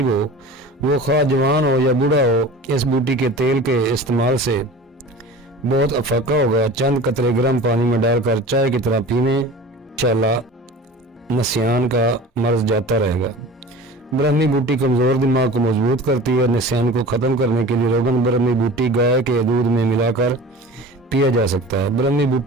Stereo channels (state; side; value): normal; both; correlation 0.38